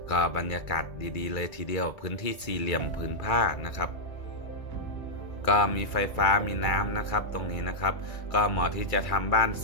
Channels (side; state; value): right; late; 2.3 ms